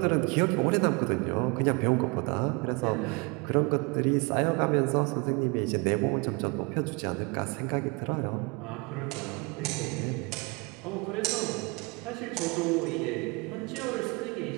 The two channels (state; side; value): quieter; left; 29.2 dB